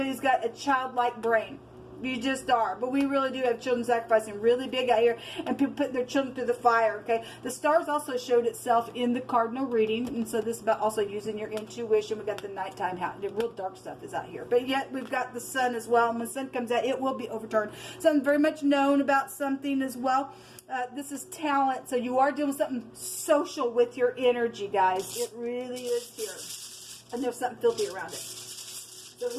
who's got a childlike brain. You just are. But we really do have children sacrificing really big out here, and people putting their children through the fire. Okay, the stars also showed itself in the cardinal reading, and so this is about also using your intuition. We got the nighttime, the real dark stuff is out here, but yet we've got the sun as well, and when the sun comes out, it will be overturned. Something very much known about something as well. This is talent, so you are doing something social with your energy, guys. It really is here. And there's something filthy around it. So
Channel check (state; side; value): identical; both; correlation 1.00